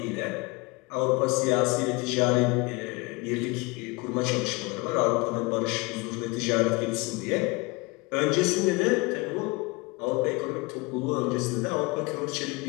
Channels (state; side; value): quieter; right; 25.5 dB